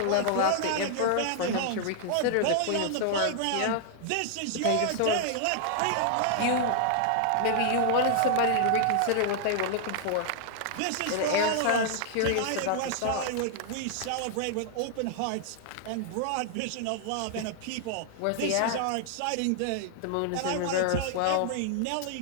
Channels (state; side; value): different; both; correlation -0.01